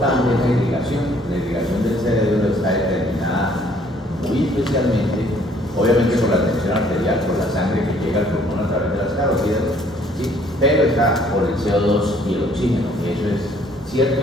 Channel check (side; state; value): both; normal; correlation 0.61